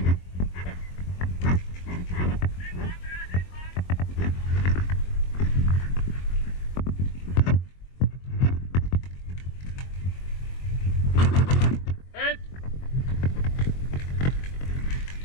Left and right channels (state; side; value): late; right; 22 ms